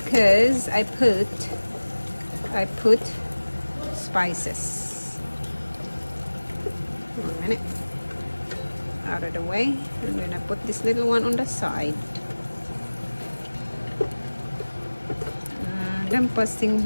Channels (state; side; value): inverted; both; correlation -1.00